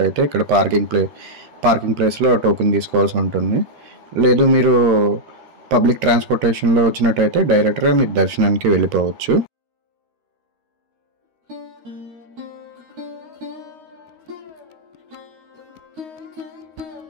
ఇక్కడ పార్కింగ్ ప్లేస్లో టోకెన్ తీసుకోవాల్సి ఉంటుంది. లేదు మీరు పబ్లిక్ ట్రాన్స్పోర్టేషన్లో వచ్చినట్టయితే డైరెక్ట్గా మీరు దర్శనానికి వెళ్ళిపోవచ్చు.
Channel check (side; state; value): left; late; 13 ms